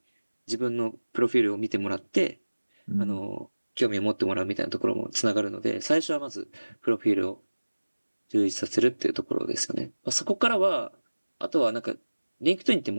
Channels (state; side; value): inverted; both; correlation -1.00